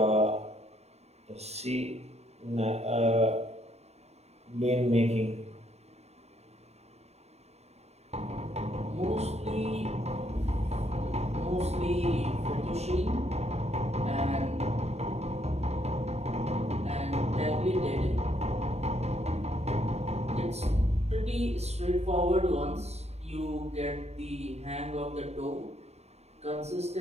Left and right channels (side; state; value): left; late; 0.31 ms